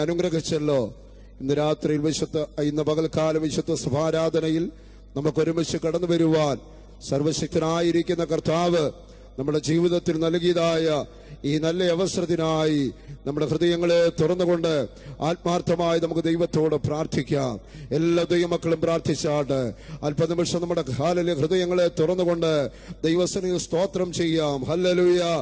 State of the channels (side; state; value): both; identical; correlation 1.00